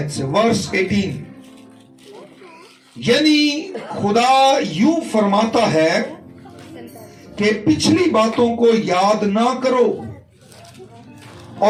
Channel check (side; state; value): both; identical; correlation 1.00